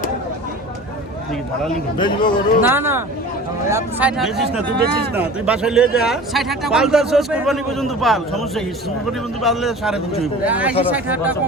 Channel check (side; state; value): both; normal; correlation 0.39